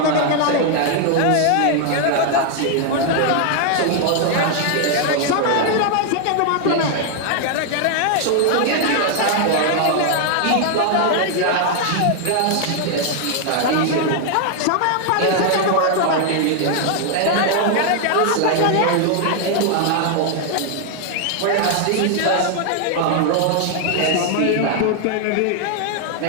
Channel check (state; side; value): different; both; correlation 0.00